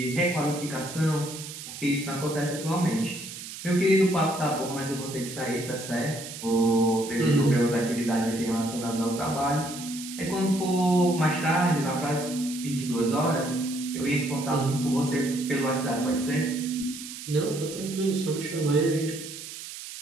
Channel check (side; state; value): right; noise; hiss, 11 dB below the sound